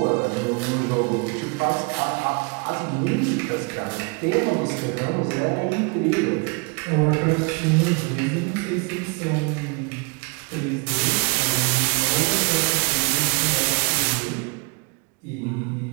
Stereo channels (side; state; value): left; quieter; 31.6 dB